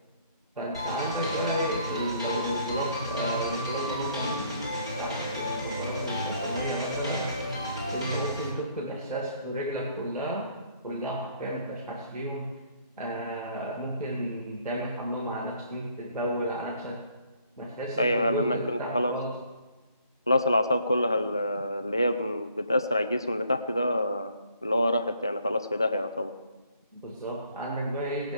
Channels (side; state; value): both; inverted; correlation -0.63